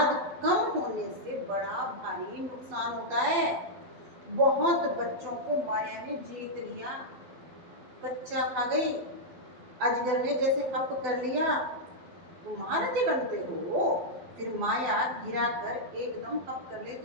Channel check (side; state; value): left; late; 12 ms